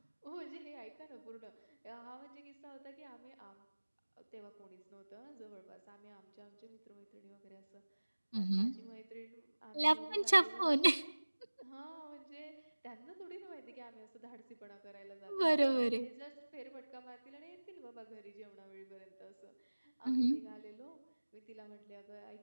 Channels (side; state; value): both; inverted; correlation -1.00